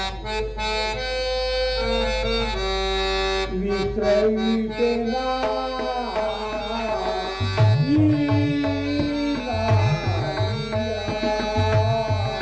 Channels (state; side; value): identical; both; correlation 1.00